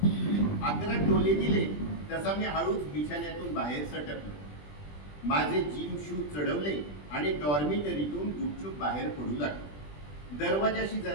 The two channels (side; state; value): right; late; 20 ms